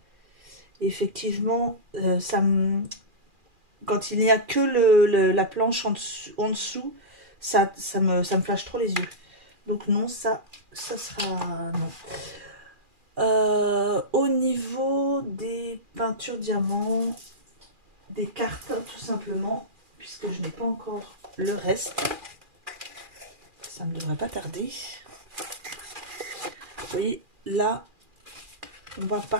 Et effectivement, ça me... quand il n'y a que la planche en dessous, ça me flash trop les yeux. Donc non, ça sera non. Au niveau des peintures diamants, des cartes tout simplement, puisque je n'ai pas encore le reste, ça ne devrait pas tarder. Et là, on va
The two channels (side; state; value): left; late; 2.4 ms